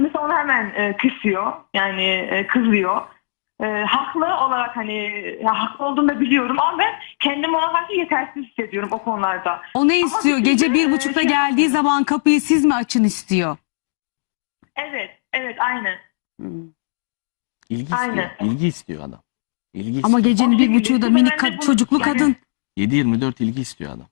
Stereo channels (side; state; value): right; silent; digital silence